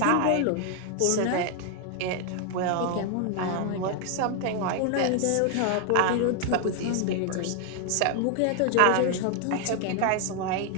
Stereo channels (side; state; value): both; different; correlation 0.00